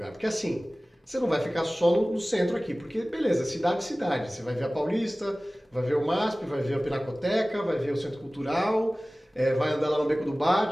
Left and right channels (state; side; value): normal; both; correlation 0.98